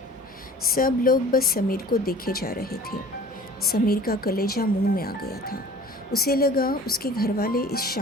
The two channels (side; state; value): both; normal; correlation 0.45